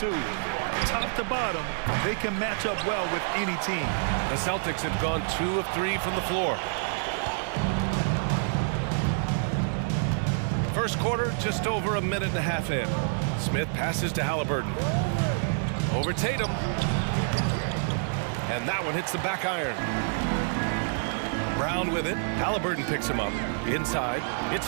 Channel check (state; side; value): silent; left; digital silence